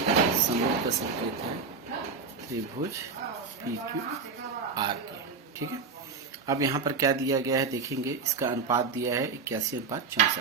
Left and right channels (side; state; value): left; quieter; 4.9 dB